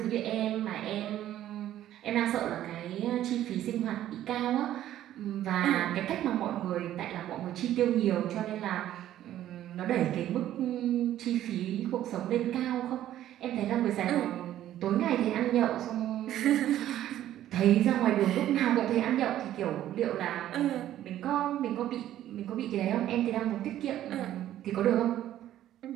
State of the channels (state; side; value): quieter; left; 12.5 dB